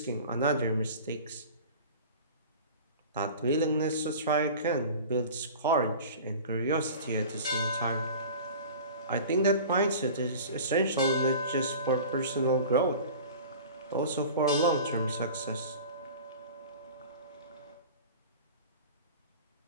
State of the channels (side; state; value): both; inverted; correlation -0.39